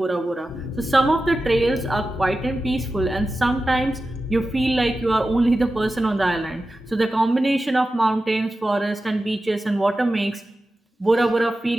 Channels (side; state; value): both; normal; correlation 0.93